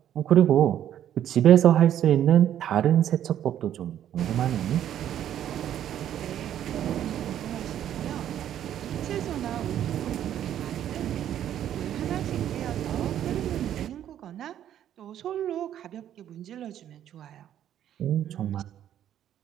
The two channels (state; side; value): quieter; left; 10.8 dB